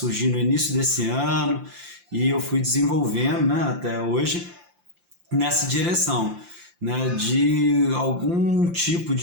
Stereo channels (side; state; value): left; late; 5.8 ms